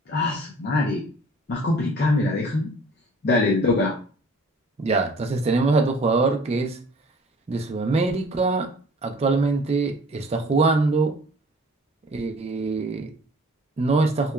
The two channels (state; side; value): normal; both; correlation 0.49